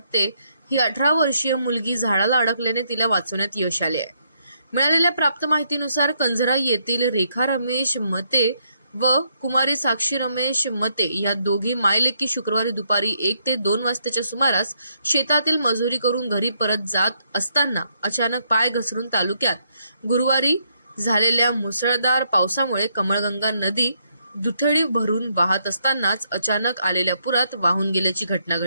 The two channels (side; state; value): both; inverted; correlation -0.74